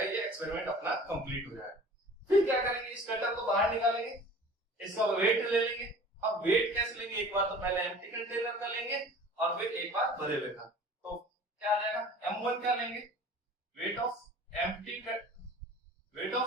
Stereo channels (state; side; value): normal; both; correlation 0.44